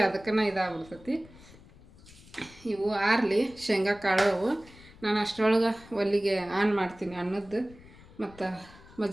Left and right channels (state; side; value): noise; left; rumble, 22 dB below the sound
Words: ಅದಕ್ಕನ ಇದಾಗ್ಬಿಡ್ತೈತಿ. ಇವು ಆರ್ಲಿ ಶೇಂಗಾ ಕಾಳು. ನಾನು ಅಷ್ಟರೊಳಗೆ ಒಲ್ಲಿಗೆ ಆನ್ ಮಾಡ್ತೀನಿ ಅನ್ನದ್ದು, ಮತ್ತು